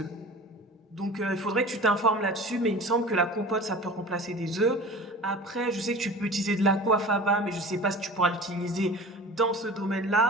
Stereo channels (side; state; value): both; normal; correlation 0.38